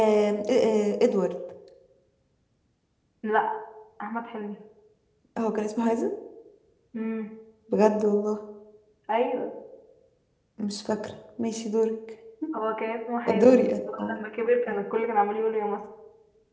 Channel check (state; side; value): identical; both; correlation 1.00